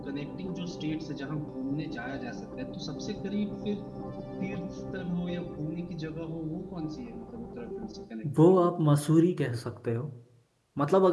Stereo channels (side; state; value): both; identical; correlation 1.00